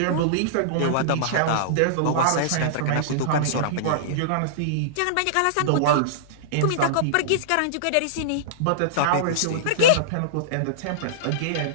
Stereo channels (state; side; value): different; both; correlation -0.02